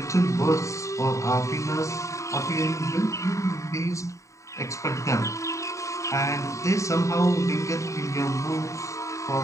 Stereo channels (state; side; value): late; right; 0.15 ms